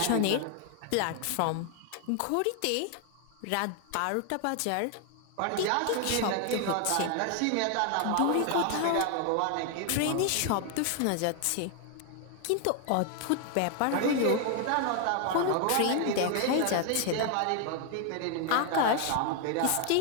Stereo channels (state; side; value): different; both; correlation 0.00